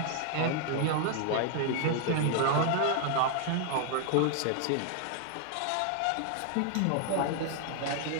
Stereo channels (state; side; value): different; both; correlation 0.00